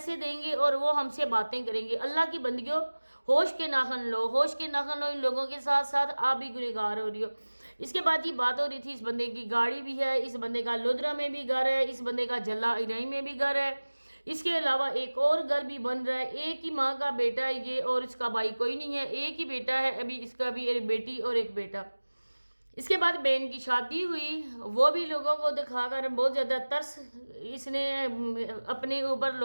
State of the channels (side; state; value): both; inverted; correlation -1.00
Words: دیں گے اور وہ ہم سے باتیں کریں گے۔ اللہ کی بندگیوں، ہوش کے ناخن لو، ہوش کے ناخن لو، ان لوگوں کے ساتھ ساتھ آپ بھی گنہگار ہو رہی ہو۔ اس کے بعد یہ بات ہو رہی تھی اس بندے کی گاڑی بھی ہے، اس بندے کا لودرا میں بھی گھر ہے، اس بندے کا جلا ارائی میں بھی گھر ہے، اس کے علاوہ ایک اور گھر بھی بن رہا ہے، ایک ہی ماں کا بیٹا ہے یہ، اور اس کا بھائی کوئی نہیں ہے، ایک ہی بیٹا ہے ابھی اس کا بھی، ایک بیٹی اور ایک بیٹا۔ اس کے بعد بہن کی شادی ہوئی، وہ بھی لوگوں کو دکھا کر بہت زیادہ ترس اس نے اپنے اوپر